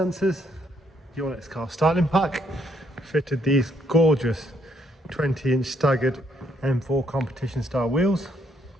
Your next car styling pack fitted these gorgeous 20-inch staggered M4 competition style wheels.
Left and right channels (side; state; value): both; normal; correlation 0.71